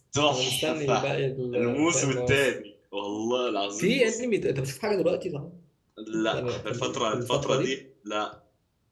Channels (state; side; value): identical; both; correlation 1.00